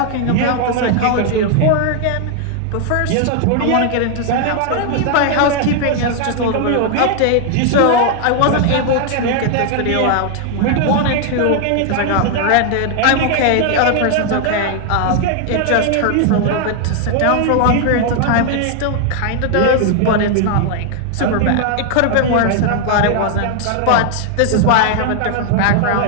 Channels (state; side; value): different; both; correlation 0.00